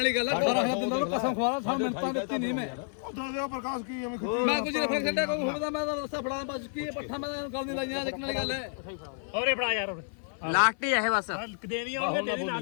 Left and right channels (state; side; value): silent; right; 58 dB below the other